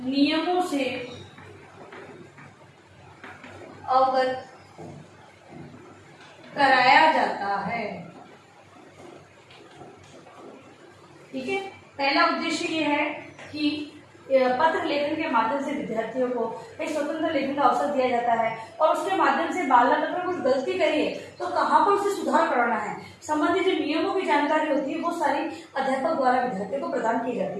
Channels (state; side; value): identical; both; correlation 1.00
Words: नियमों से अवगत कराया जाता है। ठीक है, पहला उद्देश्य ये है कि पत्र लेखन के माध्यम से विद्यार्थियों को एक स्वतंत्र लेखन का अवसर दिया जाता है और उसके माध्यम से बालक अगर कुछ गलती करिए तो कहाँ पर उसे सुधार करना है, संबंधित जो नियमों की जानकारी होती है वो सारी अध्यापक द्वारा विद्यार्थियों को प्रदान की जाती